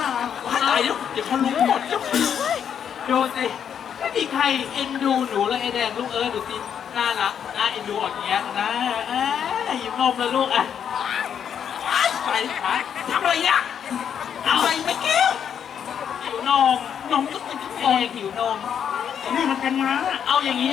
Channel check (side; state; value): right; quieter; 8.3 dB